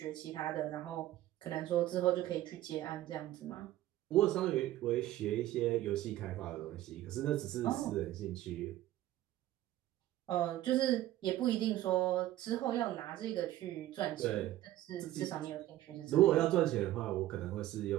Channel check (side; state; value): left; quieter; 14.5 dB